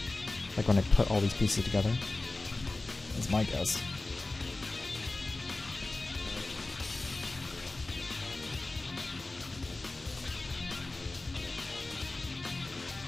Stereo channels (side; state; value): right; quieter; 3.1 dB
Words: Like when I put all these pieces together. That's my guess.